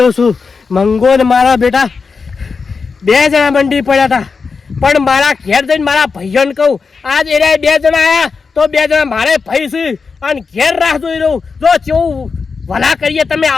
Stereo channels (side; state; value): right; quieter; 5.0 dB